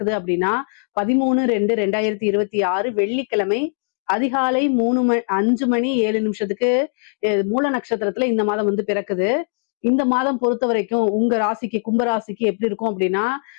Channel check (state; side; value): silent; right; digital silence